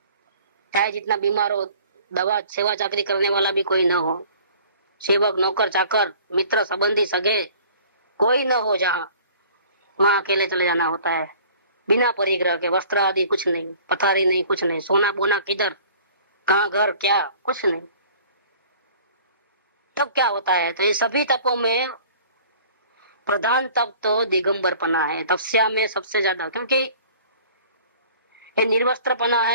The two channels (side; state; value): both; inverted; correlation -0.50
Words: चाहे जितना बीमार हो, दवा सेवा चाकरी करने वाला भी कोई न हो, सेवक नौकर चाकर मित्र संबंधी सगे कोई न हो, जहाँ वहां अकेले चले जाना होता है, बिना परिग्रह के, वस्त्र आदि कुछ नहीं, पथारी नहीं, कुछ नहीं, सोना बोना किधर, कहाँ घर क्या, कुछ नहीं। तब क्या होता है, तो ये सभी तपों में प्रधान तप तो दिगंबरपना है, तपस्या में सबसे ज्यादा, क्योंकि ये निर्वस्त्रपना